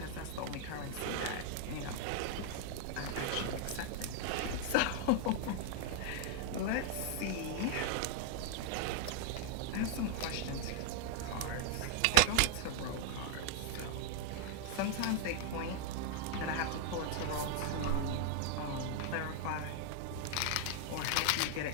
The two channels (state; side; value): different; both; correlation 0.00